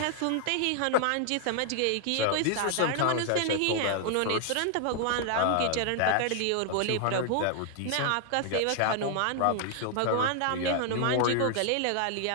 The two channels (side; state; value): both; different; correlation 0.00